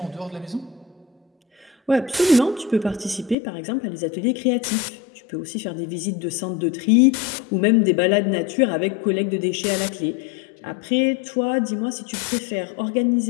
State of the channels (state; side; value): drops out; right; at 3.4 s